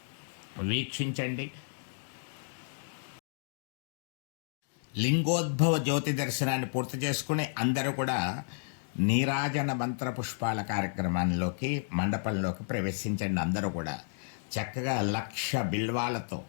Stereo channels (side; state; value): right; silent; digital silence